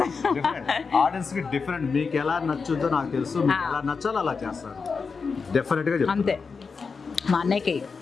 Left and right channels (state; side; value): quieter; right; 5.1 dB